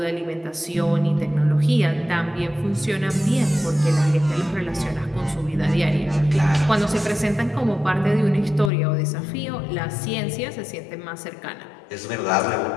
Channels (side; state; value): right; drops out; at 8.7 s